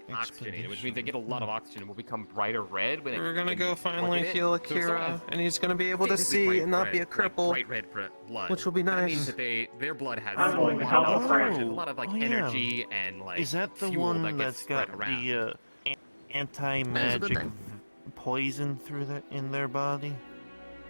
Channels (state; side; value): inverted; both; correlation -1.00